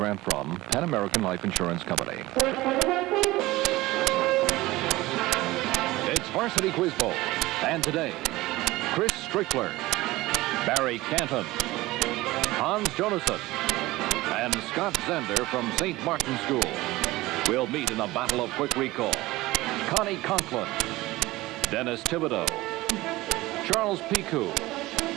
from Pan American Life Insurance Company. It's Varsity Quiz Bowl, and today, Chris Strickler, Barry Canton, Hans Jonason, and Scott Zender from St. Martin School will meet in a battle of quick recall. Connie Conklin, Dennis Thibodeau, Charles Picou,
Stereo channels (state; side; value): quieter; left; 19.0 dB